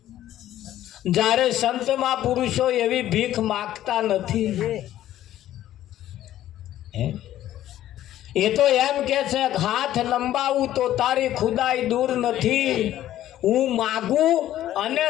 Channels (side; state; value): right; quieter; 13.0 dB